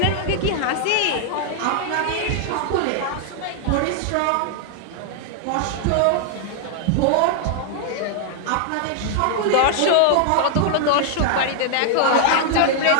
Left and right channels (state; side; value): different; both; correlation 0.00